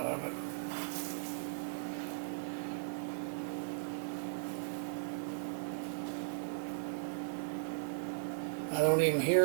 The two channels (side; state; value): left; silent; 53 dB below the other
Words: of it. I don't even